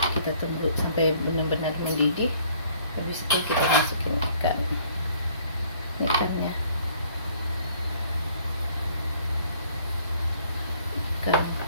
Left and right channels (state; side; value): inverted; both; correlation -0.59